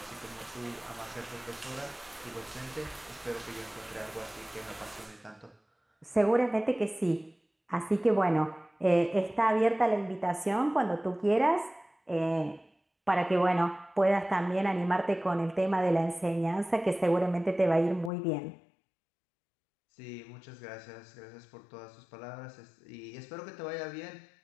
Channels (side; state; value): right; drops out; at 18.1 s